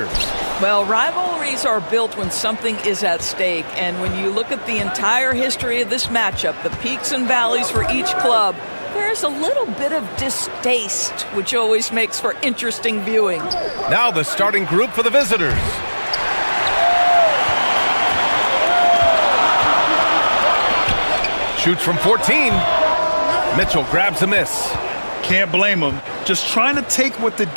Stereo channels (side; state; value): both; inverted; correlation -1.00